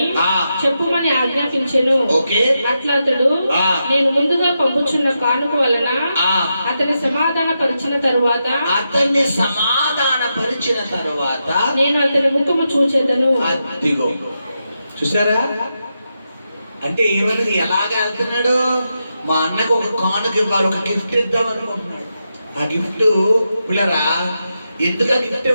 చెప్పుమని ఆజ్ఞాపించెను. అట్లా అతడు నేను ముందుగా పంపుచున్న కానుక వలన అతన్ని సమాధాన పరిచిన తరువాత నేను అతని ముఖము చూచెదను. చూసారా? అంటే ఏమన్నది? ఎలాగ వెళ్తున్నాడు? మా అన్నకు ఒక కానుక ఇవ్వాలి, ఒక గిఫ్ట్ ఇద్దాం అనుకుంటున్నాడు. ఆ గిఫ్ట్ పిల్లరా ఎందుకు ఆ గిఫ్ట్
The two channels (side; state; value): both; inverted; correlation -0.87